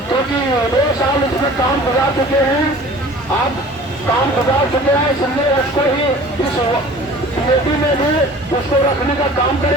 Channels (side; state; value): both; normal; correlation 0.45